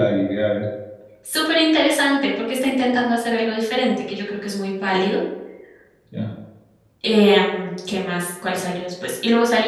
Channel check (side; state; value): both; identical; correlation 1.00